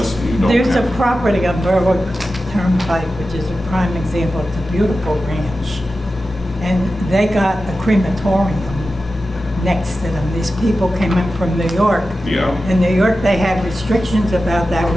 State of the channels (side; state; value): both; normal; correlation 0.93